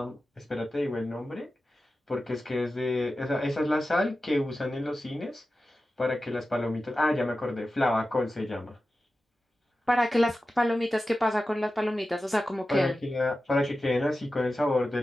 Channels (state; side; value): normal; both; correlation 0.93